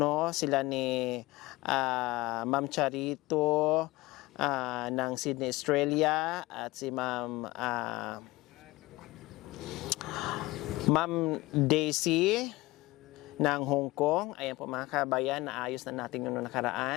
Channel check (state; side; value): quieter; right; 20.3 dB